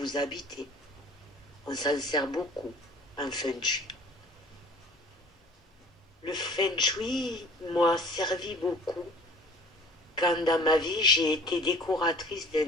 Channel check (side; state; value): both; normal; correlation 0.49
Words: habitez. On s'en sert beaucoup en feng shui. Le feng shui m'a servi beaucoup quand dans ma vie j'ai été décoratrice